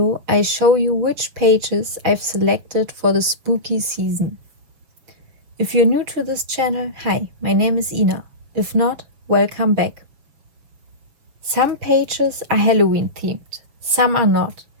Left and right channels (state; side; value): late; left; 6.7 ms